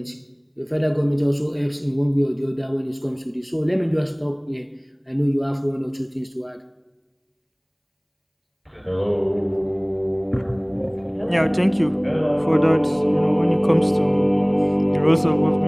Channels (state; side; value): identical; both; correlation 1.00